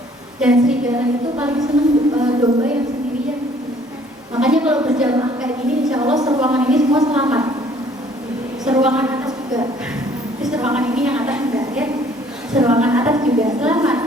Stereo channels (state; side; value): normal; both; correlation 0.58